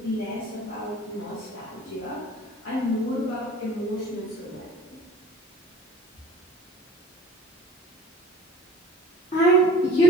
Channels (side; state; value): both; normal; correlation 0.46